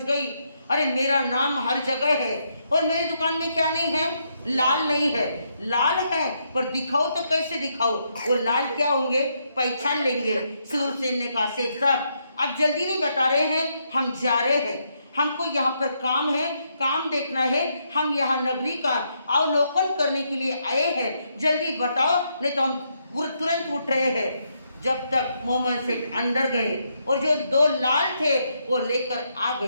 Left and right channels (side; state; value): both; inverted; correlation -0.77